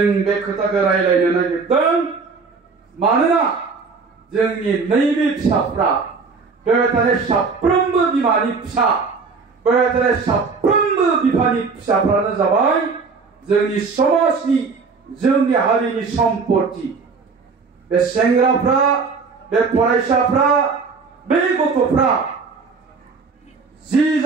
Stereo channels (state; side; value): quieter; left; 4.8 dB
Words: बे खोथाखौ रायलायनो नागिरदों मानोना जोंनि नैबे फिसाफ्रा बेवहाय थानाय साफ्रोमबो बिमानि फिसा बेवहाय थानाय साफ्रोमबो बिफानि फिसाफ्रानो जाबाय जोंनि समाजनि जोंनि हारिनि सम्पति बे सेंग्राफ्रा बे फरायसाफ्रा बे गथ'फ्रा जि